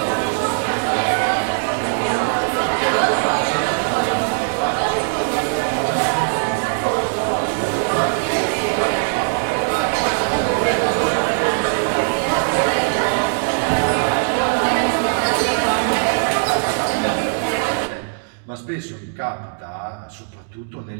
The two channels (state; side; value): silent; left; digital silence